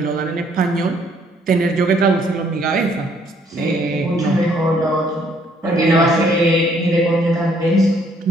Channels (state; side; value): normal; both; correlation 0.65